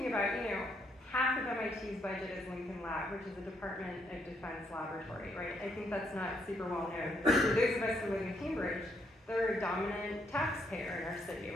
about, half of MIT's budget is Lincoln Lab, which is a Department of Defense laboratory, right? I think that's not super well known. For those of us who live in Cambridge, they're a dominant taxpayer in our city,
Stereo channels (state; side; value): normal; both; correlation 0.73